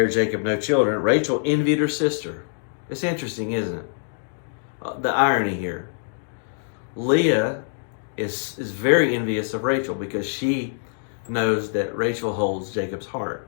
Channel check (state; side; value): silent; right; digital silence